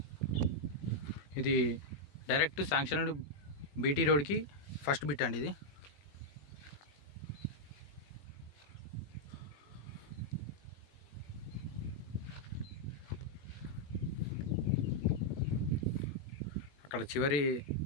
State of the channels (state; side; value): late; right; 21 ms